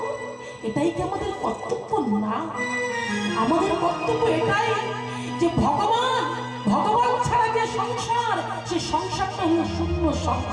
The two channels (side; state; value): both; identical; correlation 1.00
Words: এটাই কি আমাদের কর্তব্য না? আমাদের কর্তব্য এটাই যে ভগবান, ভগবান ছাড়া যে সংসার, সে সংসারটা হলো শূন্য